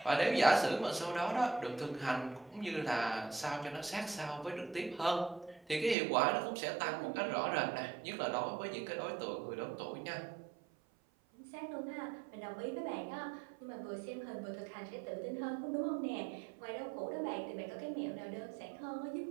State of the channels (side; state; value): left; drops out; at 6.0 s